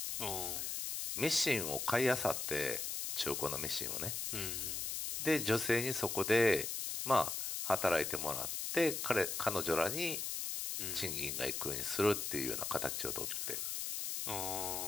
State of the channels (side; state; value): left; noise; hiss, 2 dB below the sound